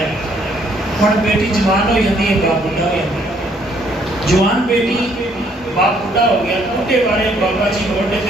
ہے ہن بیٹی جوان ہو جاتی ہے باپ بڑھا ہو جاتا ہے جوان بیٹی باپ بڑھا ہو گیا بوڑھے والے بابا جی موٹے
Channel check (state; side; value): normal; both; correlation 0.66